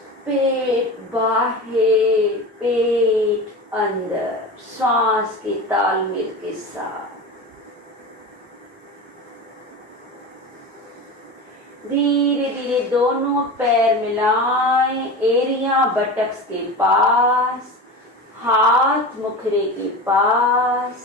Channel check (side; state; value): both; normal; correlation 0.28